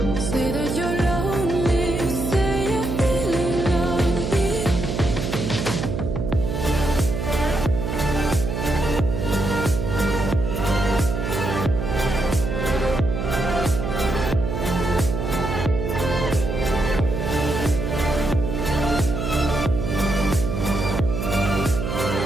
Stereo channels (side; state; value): right; noise; hum, 2 dB below the sound